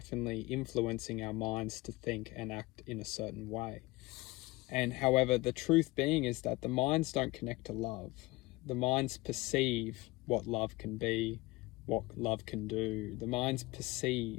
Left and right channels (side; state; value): right; quieter; 21.7 dB